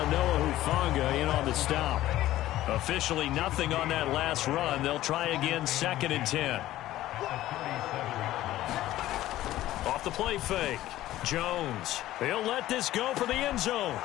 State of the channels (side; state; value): right; quieter; 14.7 dB